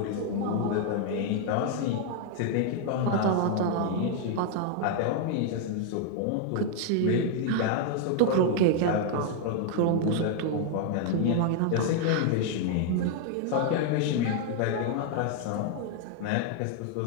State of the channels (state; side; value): different; both; correlation 0.00